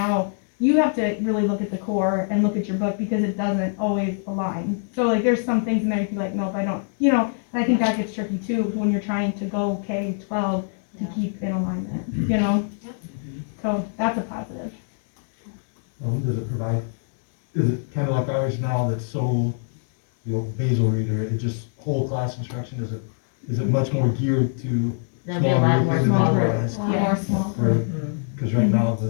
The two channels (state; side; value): silent; right; digital silence